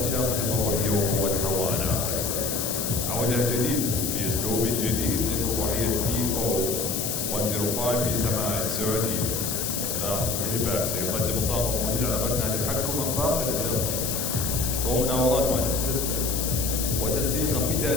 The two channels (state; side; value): noise; left; hiss, 2 dB below the sound